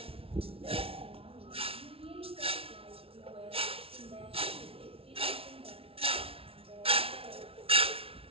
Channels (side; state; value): left; late; 0.27 ms